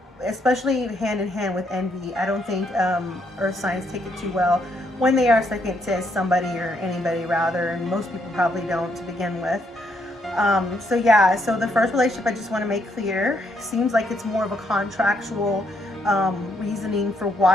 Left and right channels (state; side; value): normal; both; correlation 0.74